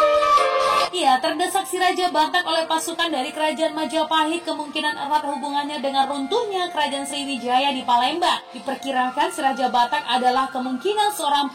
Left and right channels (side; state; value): both; identical; correlation 1.00